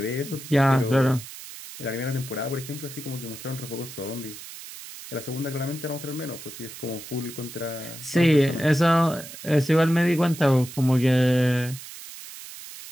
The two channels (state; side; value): noise; right; hiss, 13 dB below the sound